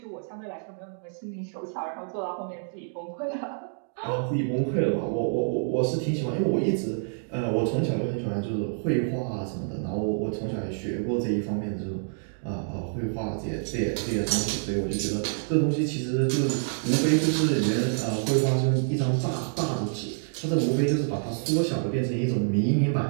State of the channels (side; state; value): left; silent; digital silence